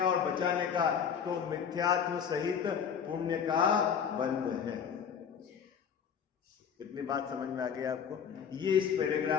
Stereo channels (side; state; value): right; quieter; 7.4 dB